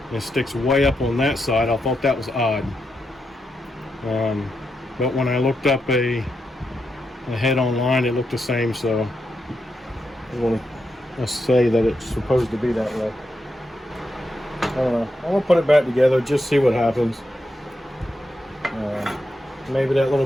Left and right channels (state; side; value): normal; both; correlation 0.85